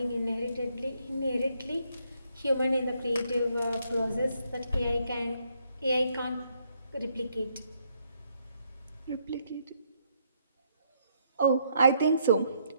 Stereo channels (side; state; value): both; inverted; correlation -0.72